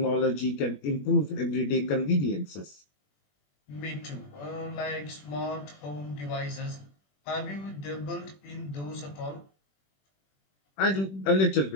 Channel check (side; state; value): right; late; 21 ms